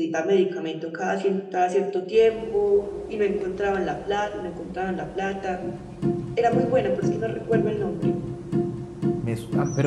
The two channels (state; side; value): identical; both; correlation 1.00